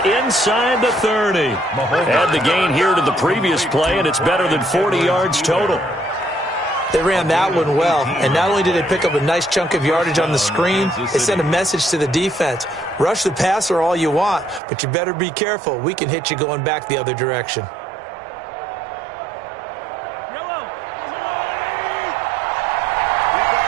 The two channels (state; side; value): drops out; left; at 14.6 s